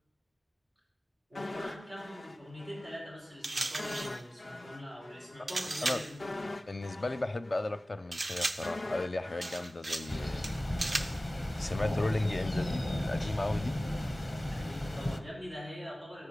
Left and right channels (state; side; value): normal; both; correlation 0.97